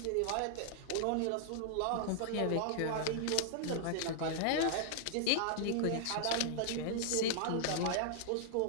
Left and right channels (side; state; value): both; different; correlation -0.01